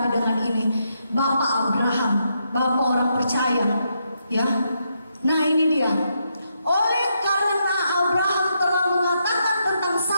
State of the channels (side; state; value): both; inverted; correlation -0.80